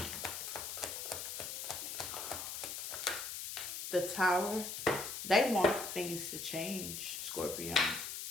the Tower. They want things to change, Scorpio.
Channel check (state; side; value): noise; left; hiss, 5 dB below the sound